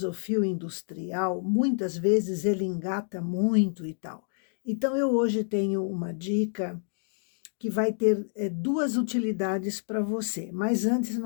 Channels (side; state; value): right; silent; digital silence